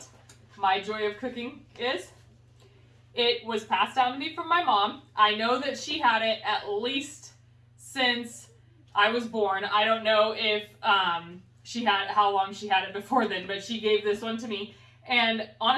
my Joy of Cooking is. It was passed down to me from my mom. I know that she had it at least since I was born. I don't know if how long she had it before then, but she gave this one to me. And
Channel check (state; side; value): identical; both; correlation 1.00